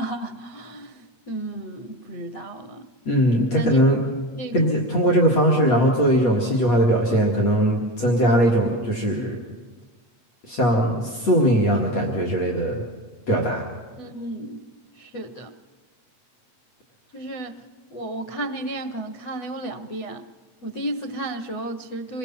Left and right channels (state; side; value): late; right; 8.4 ms